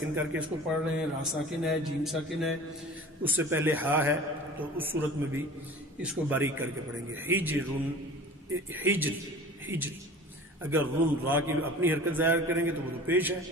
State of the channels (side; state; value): both; normal; correlation 0.41